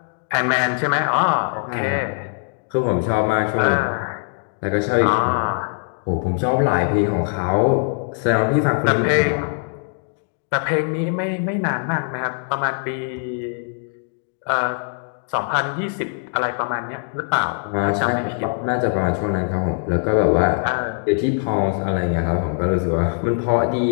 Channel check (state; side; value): silent; right; 57 dB below the other